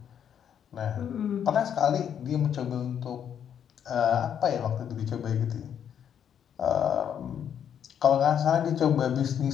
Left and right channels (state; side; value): quieter; right; 8.8 dB